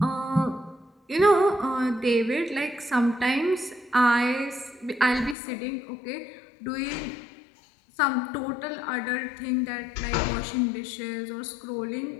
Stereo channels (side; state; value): right; drops out; at 5.4 s